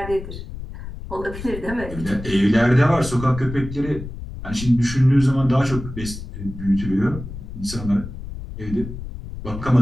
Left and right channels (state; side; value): noise; left; rumble, 10 dB below the sound